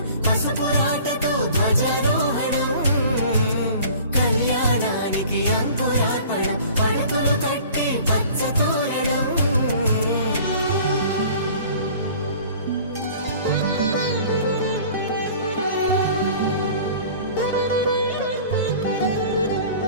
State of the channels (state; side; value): inverted; both; correlation -0.46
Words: పసుపురాటతో ధ్వజారోహణం కళ్యాణానికి అంకురార్పణం పడుకులు కట్టి పచ్చ తోరణం